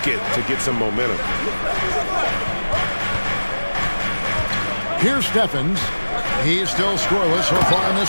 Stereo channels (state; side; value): inverted; both; correlation -1.00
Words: to get some momentum. Here's Steffens. He's still scoreless so far in